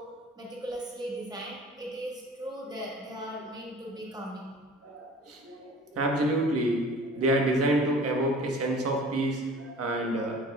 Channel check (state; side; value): normal; both; correlation 0.46